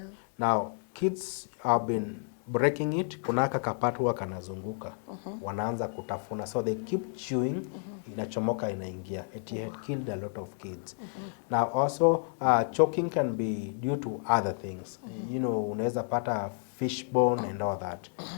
Now, kids have been breaking it, kuna kapat huwa kanazunguka. Wanaanza kutafuna. So they keep chewing, inachomoka inaingia. It had killed a lot of kids. Now also, choking can be due to other things. You know, unaweza pata fishbone and all that.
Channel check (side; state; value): right; silent; 57 dB below the other